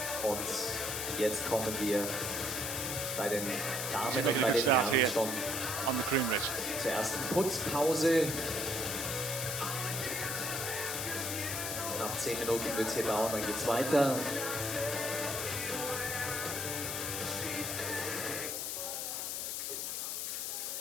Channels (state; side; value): noise; left; hiss, 2 dB below the sound